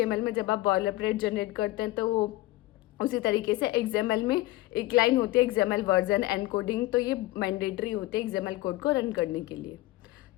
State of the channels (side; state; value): right; quieter; 17.9 dB